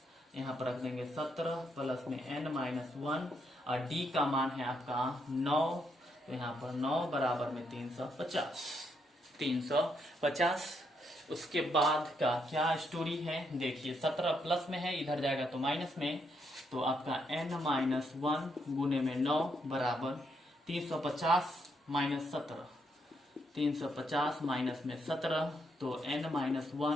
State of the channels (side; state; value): both; normal; correlation 0.77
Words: यहाँ पर रख देंगे 17 प्लस में n माइनस 1 और d का मान है आपका 9, तो यहाँ पर 9 बराबर में 350। उसके बाद का क्या स्टोरी है देखिए, 17 प्लस में है, इधर जाएगा तो माइनस में, तो आपका n माइनस 1 गुने में 9 बराबर 350 माइनस 17, 350 माइनस में 17, तो n माइनस